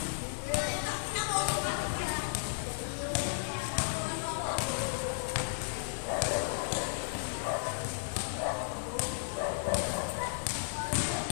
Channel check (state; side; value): silent; right; 55 dB below the other